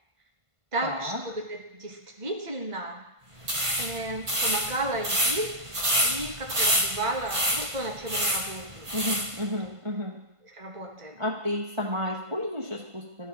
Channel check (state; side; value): late; left; 1.5 ms